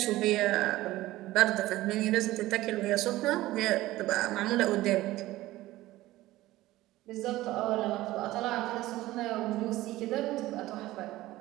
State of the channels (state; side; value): quieter; left; 16.9 dB